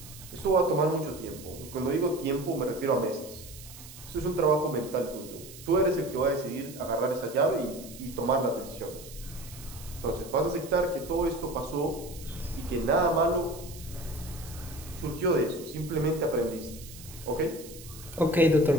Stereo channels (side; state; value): right; noise; hiss, 16 dB below the sound